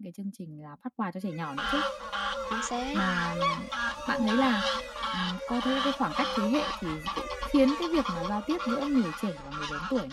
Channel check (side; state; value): both; identical; correlation 1.00